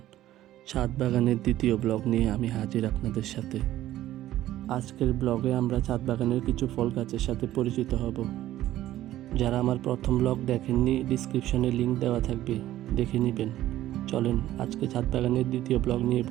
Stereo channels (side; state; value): left; quieter; 14.0 dB